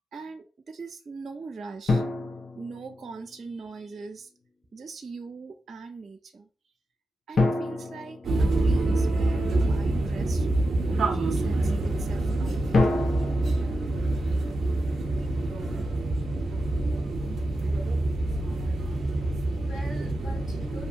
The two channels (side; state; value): both; normal; correlation 0.89